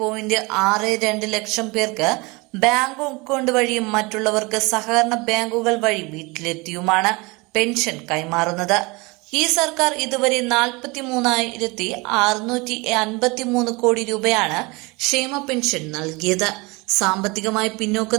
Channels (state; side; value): quieter; left; 25.7 dB